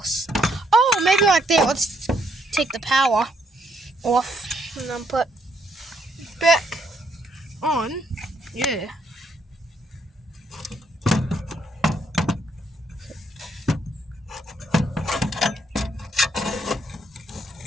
Oh, maybe like there. Let's take the power off and then put it back on. Yeah.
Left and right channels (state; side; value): normal; both; correlation 0.72